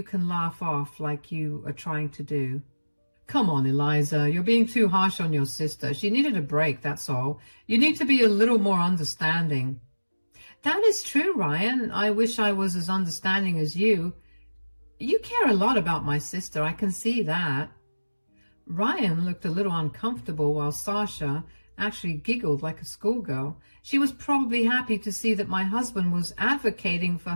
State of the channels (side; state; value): both; inverted; correlation -1.00